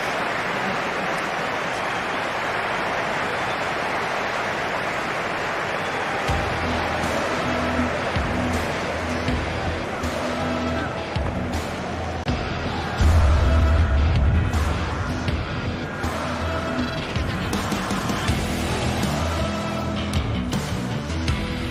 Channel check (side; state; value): both; identical; correlation 1.00